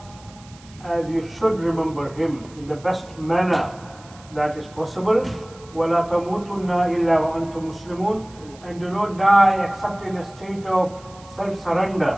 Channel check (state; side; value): noise; right; hiss, 24 dB below the sound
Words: as you should remember Him in the best manner that is possible. وَلَا تَمُوتُنَّ إِلَّا وَأَنْتُمْ مُسْلِمُونَ. And do not die except in a state of self-surrender